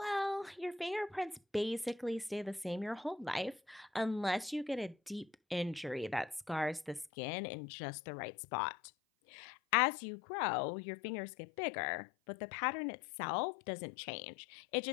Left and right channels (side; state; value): right; drops out; at 7.1 s